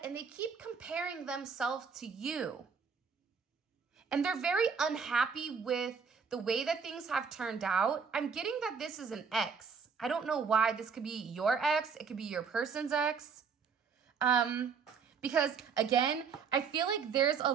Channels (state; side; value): quieter; left; 5.9 dB